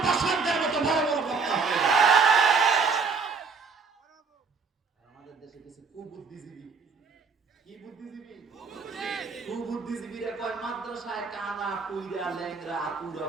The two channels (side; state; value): left; quieter; 4.9 dB